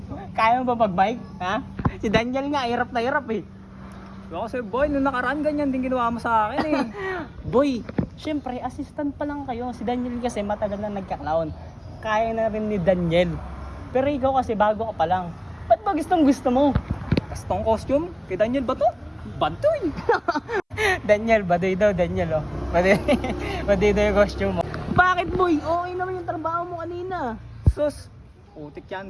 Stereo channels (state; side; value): identical; both; correlation 1.00